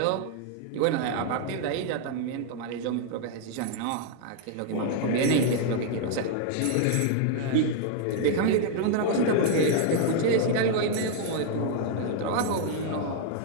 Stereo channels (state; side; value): different; both; correlation 0.00